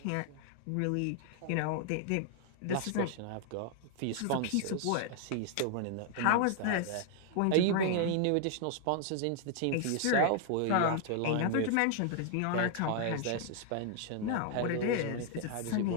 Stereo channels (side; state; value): both; different; correlation 0.00